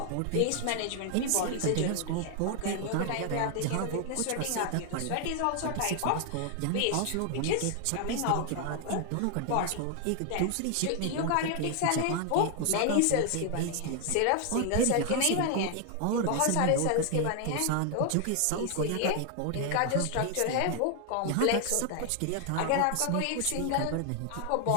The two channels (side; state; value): both; different; correlation 0.00